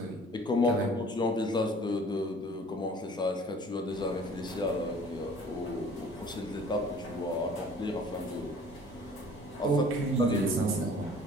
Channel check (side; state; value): both; normal; correlation 0.50